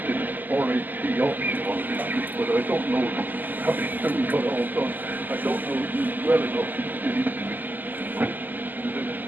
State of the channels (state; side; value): late; left; 0.085 ms